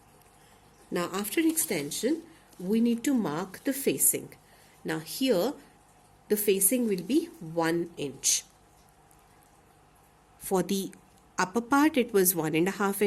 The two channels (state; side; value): identical; both; correlation 1.00